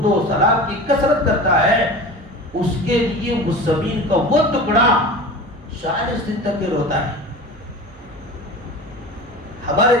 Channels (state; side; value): normal; both; correlation 0.34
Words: و سلام کی کثرت کرتا ہے، اس کے لیے اس زمین کا وہ ٹکڑا 40 دن تک روتا ہے۔ ہمارے